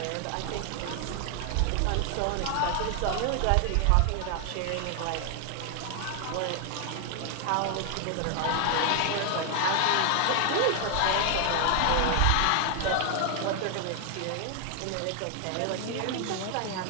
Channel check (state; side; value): different; both; correlation 0.00